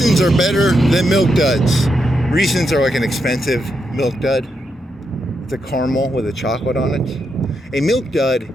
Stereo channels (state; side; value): normal; both; correlation 0.82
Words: are better than milk duds. Reese's are like an expensive milk dud. It's a caramel with a chocolate on it. A milk dud